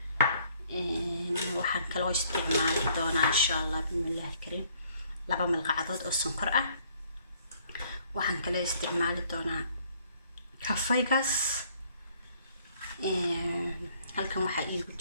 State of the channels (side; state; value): both; inverted; correlation -0.63